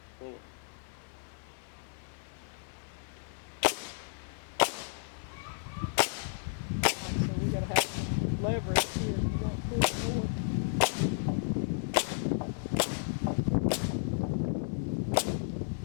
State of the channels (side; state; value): right; silent; 56 dB below the other